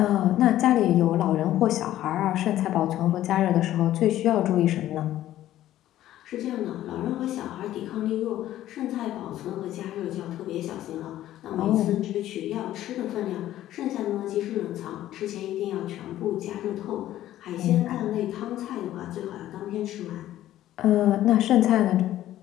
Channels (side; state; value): right; quieter; 13.4 dB